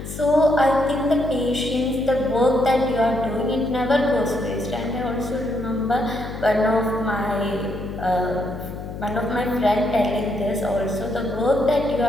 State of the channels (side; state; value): left; noise; hum, 9 dB below the sound